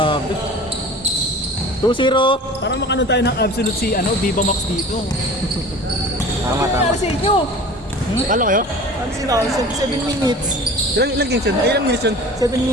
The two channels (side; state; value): both; normal; correlation 0.40